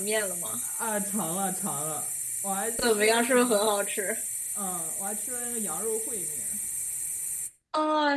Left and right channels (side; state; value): both; identical; correlation 1.00